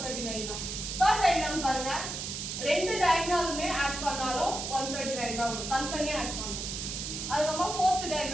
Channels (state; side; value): noise; right; hiss, 5 dB below the sound